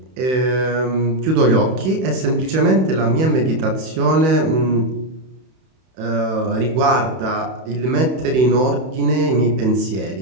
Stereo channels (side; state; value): left; late; 31 ms